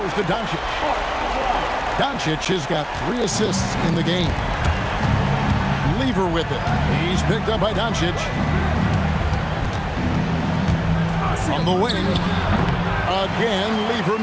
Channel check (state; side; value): identical; both; correlation 1.00